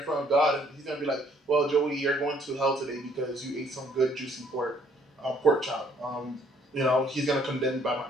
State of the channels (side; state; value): both; normal; correlation 0.64